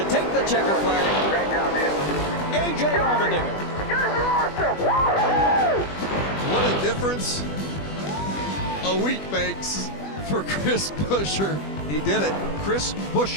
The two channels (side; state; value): right; late; 20 ms